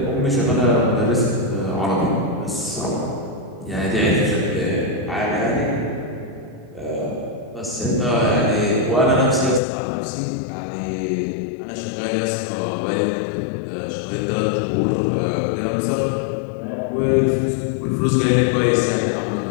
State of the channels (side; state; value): right; drops out; at 9.6 s